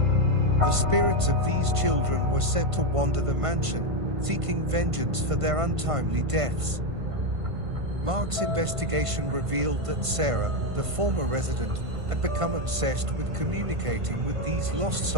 The spirits of these children were said to wander the mansion, seeking vengeance for their untimely deaths. Mark's investigation revealed that Sarah, the former resident, had become obsessed with communicating with these lost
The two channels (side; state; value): left; late; 1.5 ms